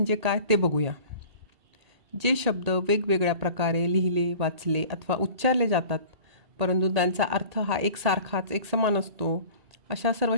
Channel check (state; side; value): late; left; 1.8 ms